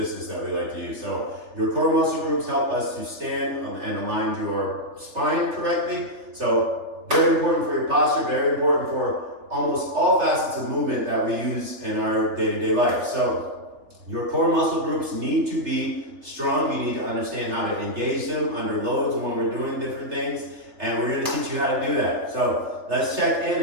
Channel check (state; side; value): late; left; 3.4 ms